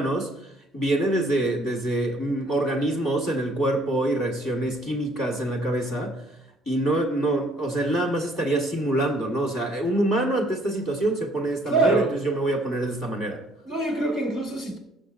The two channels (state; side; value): normal; both; correlation 0.62